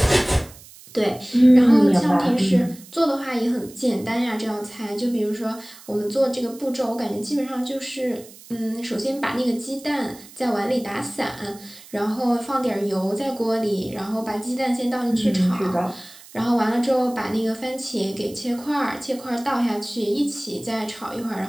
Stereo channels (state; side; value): noise; right; hiss, 20 dB below the sound